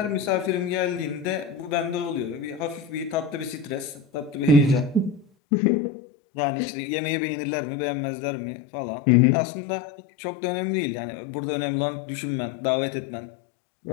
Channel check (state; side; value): drops out; right; at 5.2 s